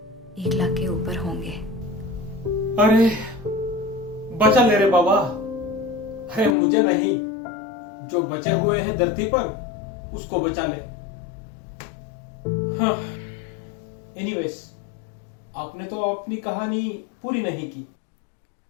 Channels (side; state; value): right; drops out; at 6.6 s